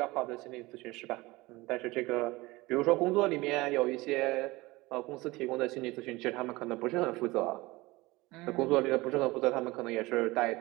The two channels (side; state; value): left; quieter; 21.2 dB